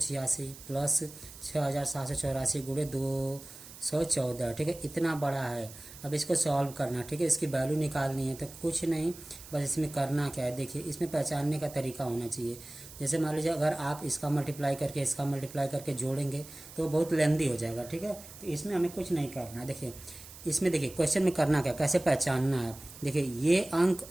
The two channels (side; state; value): right; noise; hiss, 16 dB below the sound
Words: प्लस 6784 गुणे 214। ठीक है, इतना बड़ा है। अब इसको सॉल्व करना, ठीक है, इसकी वैल्यू निकालनी है। तो कुछ नहीं, बस इसमें करना क्या है, देखिए इसमें पहचानने का तरीका होना चाहिए। जैसे मान लीजिए अगर आप इसका मल्टीप्लाई करके जोड़ेंगे तो बहुत लेंदी हो जाएगा। ठीक है, तो इसमें हमें कुछ नहीं करना। देखिए इसमें देखिए क्वेश्चन में करना क्या, कैसे पहचानना है। देखिए ये अंक